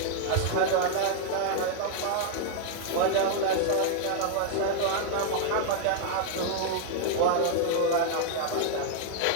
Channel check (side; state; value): both; different; correlation 0.00